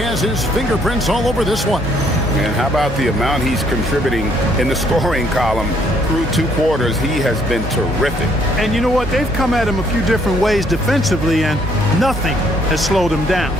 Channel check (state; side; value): normal; both; correlation 0.66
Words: his fingerprints all over this one. And how about the amount he's contributing in the scoring column through 2 quarters? He has been terrific. And you know what? They've come at him a few different ways defensively, and nothing has slowed him down.